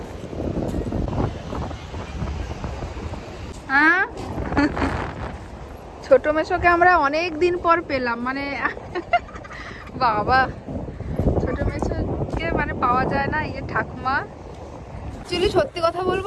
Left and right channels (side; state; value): both; identical; correlation 1.00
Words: হ্যাঁ, ছোট মেশোকে আমরা অনেক দিন পর পেলাম, মানে বাবা ছোট মেশোকে মানে পাওয়া যায় না। এই ঠাকুমা অ্যাকচুয়ালি সত্যি কথা